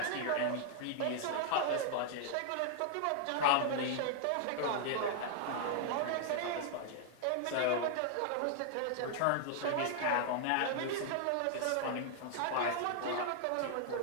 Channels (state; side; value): different; both; correlation -0.01